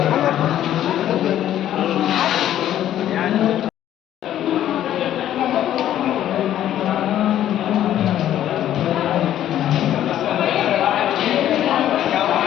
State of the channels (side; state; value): right; quieter; 11.8 dB